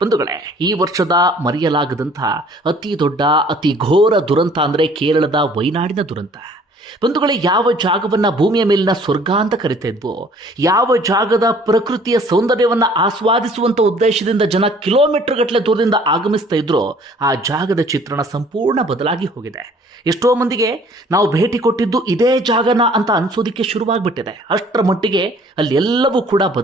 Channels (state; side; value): normal; both; correlation 0.55